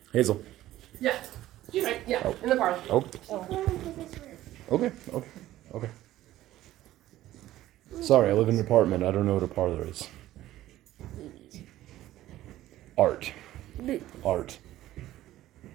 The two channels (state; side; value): quieter; left; 14.6 dB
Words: Hazel. Yeah. She's right. Yeah. Oh. In the parlor. Oh. Okay. Sorry, I live in an apartment. I don't know what a parlor is. Art.